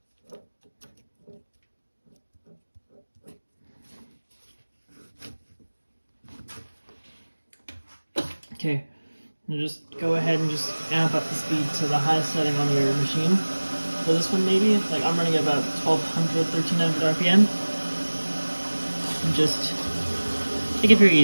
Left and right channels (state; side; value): inverted; both; correlation -1.00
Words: Okay, and just go ahead and just amp up the speed to the highest setting on your machine. For this one maybe, like I'm running about 1200, 1300 RPM. And just take it very